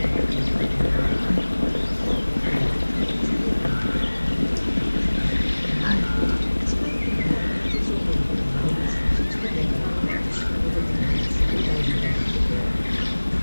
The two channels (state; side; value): inverted; both; correlation -1.00